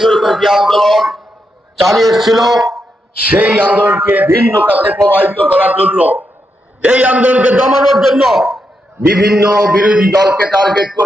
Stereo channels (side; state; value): both; normal; correlation 0.83